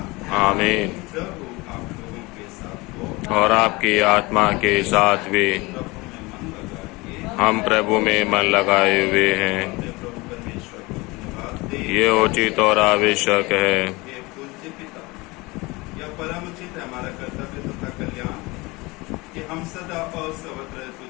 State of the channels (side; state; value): right; quieter; 23.7 dB